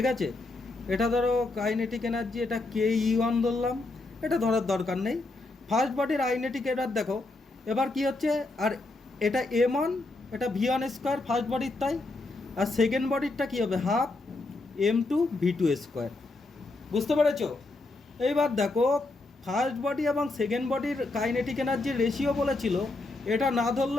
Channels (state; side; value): quieter; right; 3.1 dB